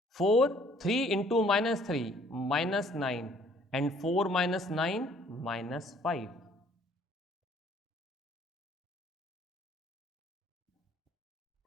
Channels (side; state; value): both; normal; correlation 0.59